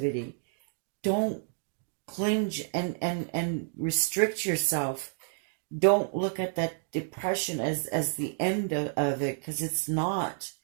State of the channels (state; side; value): silent; left; digital silence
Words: Don't clinch and restrict yourself. Don't look at that depression as the end of it, because it's not.